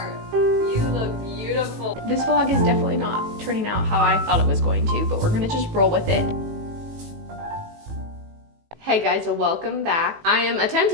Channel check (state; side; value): late; left; 18 ms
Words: You look beautiful. This vlog is definitely not turning out how I thought it was going to, but we're gonna just roll with it. Hey guys, welcome back. I am